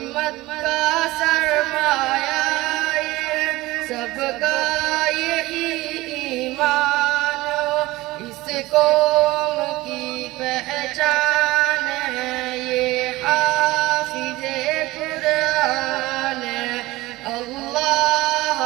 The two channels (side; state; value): left; quieter; 19.3 dB